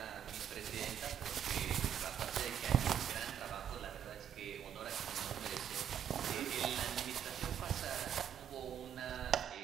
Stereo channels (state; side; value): quieter; left; 9.1 dB